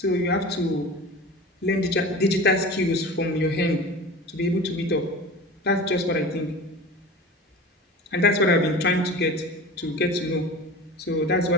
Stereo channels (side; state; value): both; normal; correlation 0.35